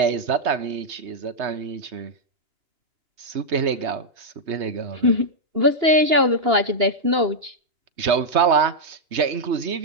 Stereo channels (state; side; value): late; left; 3.2 ms